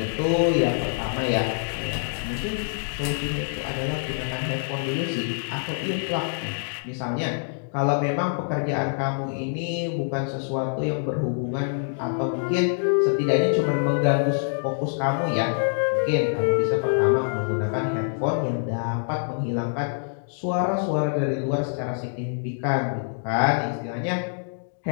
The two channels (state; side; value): silent; right; digital silence